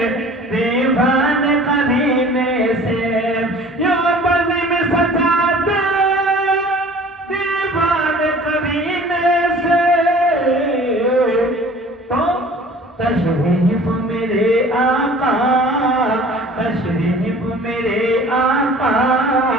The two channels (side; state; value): both; normal; correlation 0.47